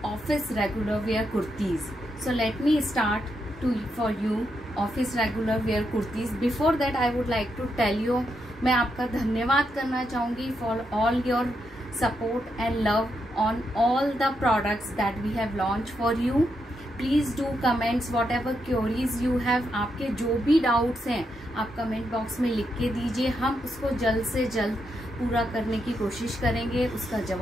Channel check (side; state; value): both; normal; correlation 0.82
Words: office regular wear kurtis. So let me start for you office regular wear kurtis. Before that I would like to tell you, मैं आपका धन्यवाद करना चाहूँगी for all your support and love on all the products that we have launched for you. Please do comments what ever queries you have. आपके जो भी doubts हैं आप कमेंट बॉक्स में लिख के दीजिए, हम उसको जल्द से जल्द पूरा करने की कोशिश करेंगे, उसका